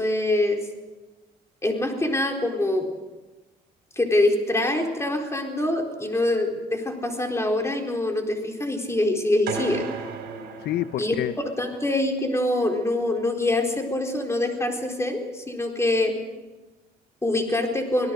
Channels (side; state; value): both; normal; correlation 0.69